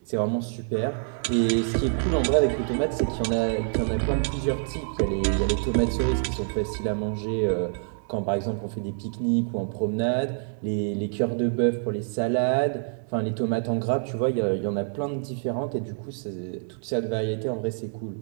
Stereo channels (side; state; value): left; silent; digital silence